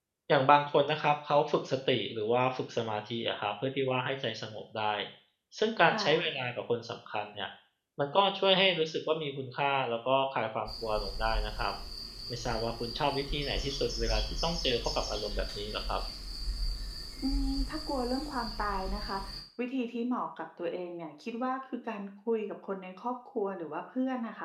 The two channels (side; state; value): both; identical; correlation 1.00